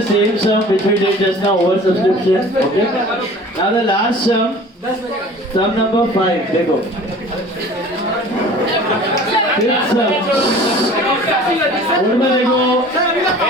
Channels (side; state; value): both; normal; correlation 0.44